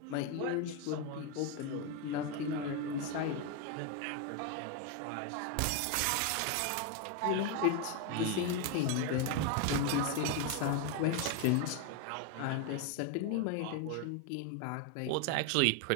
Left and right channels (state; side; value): different; both; correlation 0.01